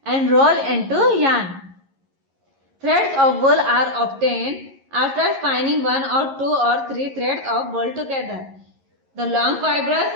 and rolled into yarn. Threads of wool are obtained after spinning 1 or 2 or 3 threads of wool together. The long fibers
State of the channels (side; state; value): left; late; 11 ms